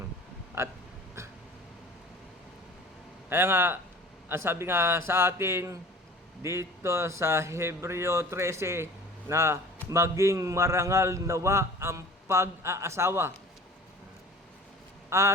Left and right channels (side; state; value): both; normal; correlation 0.43